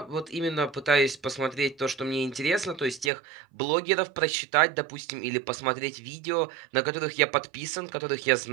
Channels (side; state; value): left; drops out; at 3.1 s